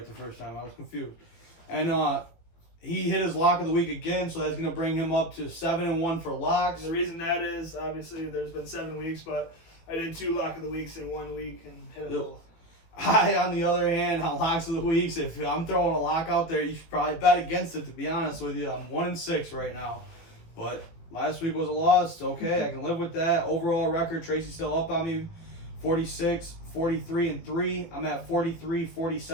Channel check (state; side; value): late; right; 18 ms